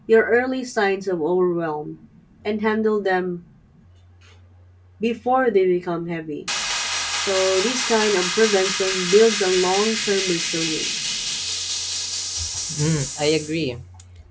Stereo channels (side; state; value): both; identical; correlation 1.00